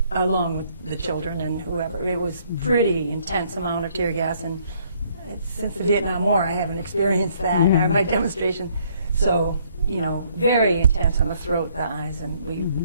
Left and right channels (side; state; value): both; inverted; correlation -0.66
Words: along with the children and whoever, it was pretty intense amount of tear gas. And since the Vietnam War, I haven't experienced that in my demonstration. So, very intense on the throat, the eyes, and we